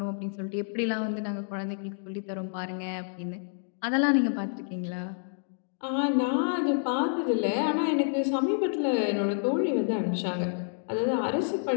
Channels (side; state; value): right; silent; digital silence